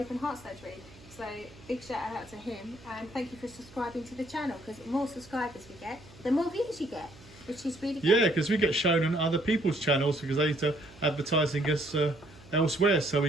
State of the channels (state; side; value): noise; right; hum, 22 dB below the sound